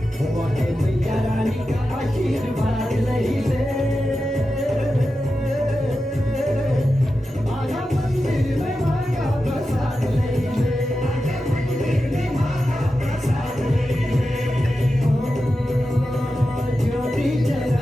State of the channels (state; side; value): normal; both; correlation 0.91